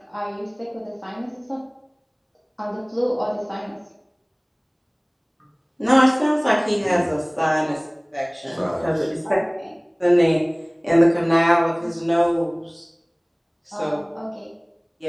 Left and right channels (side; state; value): both; identical; correlation 1.00